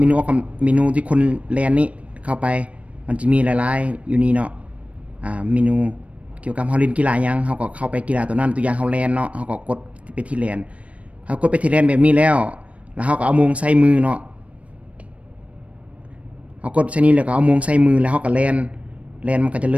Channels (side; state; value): left; late; 0.064 ms